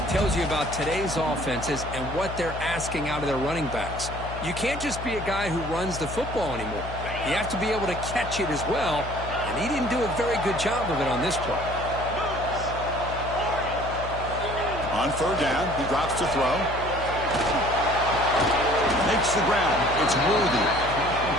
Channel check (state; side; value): noise; left; hum, 9 dB below the sound